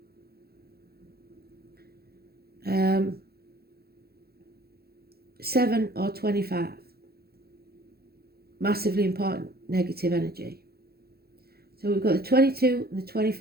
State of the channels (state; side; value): late; left; 0.46 ms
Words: 7 or 25. Massively important negative energy. So we've got the 22 and the